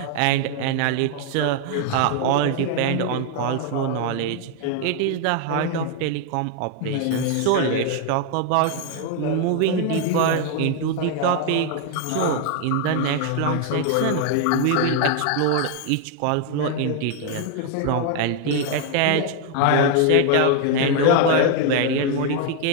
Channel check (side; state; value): both; different; correlation 0.00